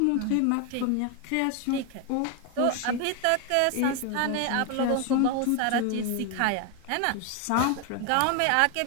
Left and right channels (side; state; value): both; different; correlation 0.01